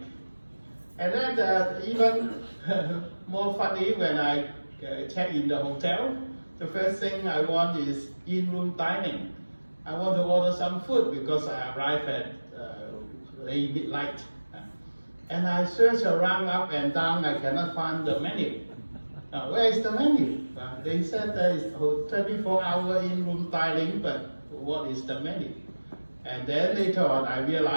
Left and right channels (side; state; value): both; inverted; correlation -1.00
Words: And then even more funny, when I check in the hotel, the first thing I want is in-room dining. I want to order some food because I arrive at late midnight. And I search around up and down, I cannot find the menu. Where is the menu? They said there is 24-hour in-room dining, but what is the menu? And then later on, I